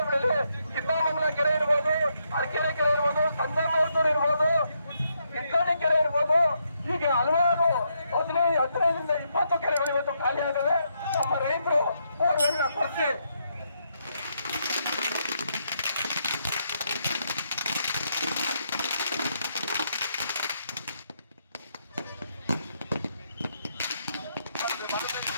ಕಿತ್ತಾಮಂಗಲ ಕೆರೆ ಇರ್ಬೋದು, ಅರಕೆರೆ ಕೆರೆ ಇರ್ಬೋದು, ಸಂದರ್ಭ ಇರ್ಬೋದು, ಇತ್ಕಾಣಿ ಕೆರೆ ಇರ್ಬೋದು, ಹೀಗೆ ಹಲವಾರು 15ರಿಂದ 20 ಕೆರೆಗಳು ಇವತ್ತು ಖಾಲಿ ಆಗವೆ. ನಮ್ಮ ರೈತರು ಬೋರ್ವೆಲ್ನ ಕೊಚ್ಚಿ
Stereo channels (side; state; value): both; inverted; correlation -0.78